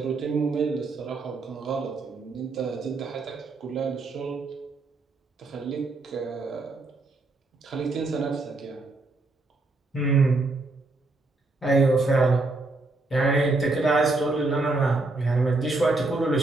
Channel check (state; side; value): quieter; left; 3.3 dB